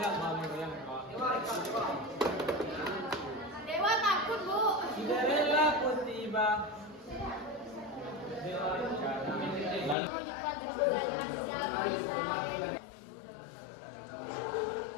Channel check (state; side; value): drops out; right; at 10.0 s